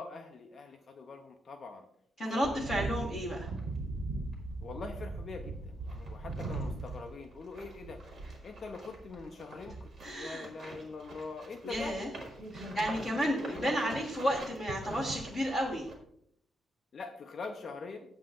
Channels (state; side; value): normal; both; correlation 0.81